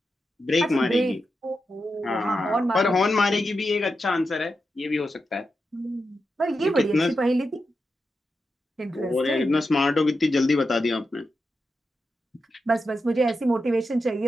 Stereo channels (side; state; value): both; normal; correlation 0.88